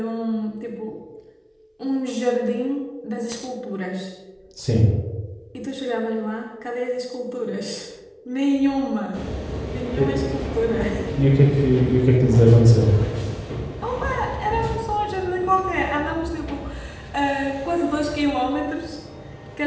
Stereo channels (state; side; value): identical; both; correlation 1.00